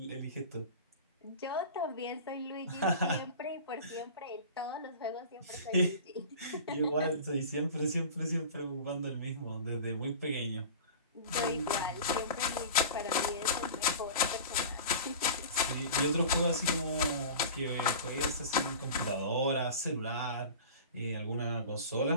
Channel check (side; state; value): both; inverted; correlation -0.36